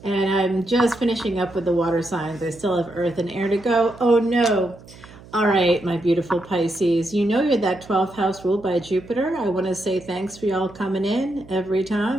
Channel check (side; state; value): right; noise; hum, 21 dB below the sound